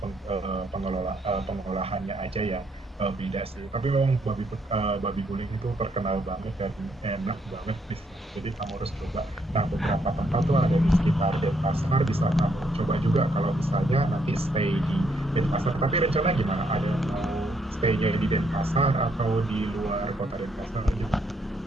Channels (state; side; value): normal; both; correlation 0.73